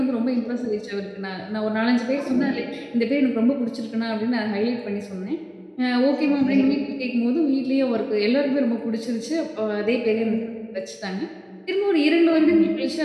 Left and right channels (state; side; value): identical; both; correlation 1.00